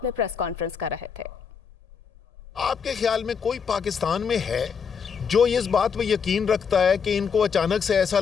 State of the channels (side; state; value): right; quieter; 6.4 dB